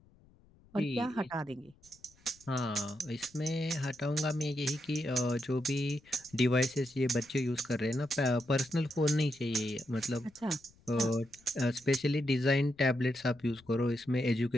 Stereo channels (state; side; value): noise; left; rumble, 29 dB below the sound